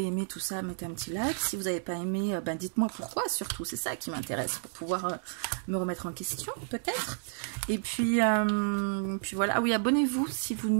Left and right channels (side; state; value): left; silent; digital silence